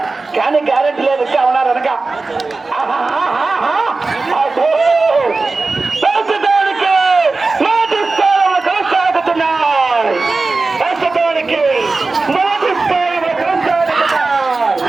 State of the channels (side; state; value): left; quieter; 3.7 dB